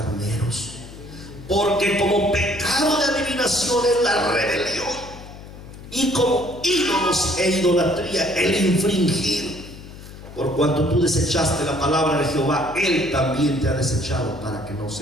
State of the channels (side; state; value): left; noise; hum, 15 dB below the sound